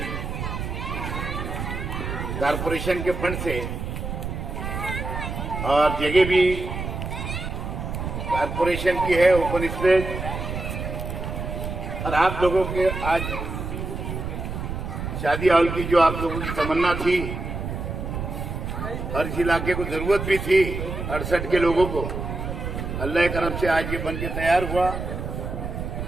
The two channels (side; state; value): right; noise; rumble, 5 dB below the sound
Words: कारपोरेशन के फंड से और जगह भी कारपोरेशन की है, ओपन स्पेस, और आप लोगों के आज शादी हॉल की जो आप लोगों की तमन्ना थी, हर इलाके को जरूरत भी थी 68 के लोगों को, अल्लाह करम से आज ये बन के तैयार हुआ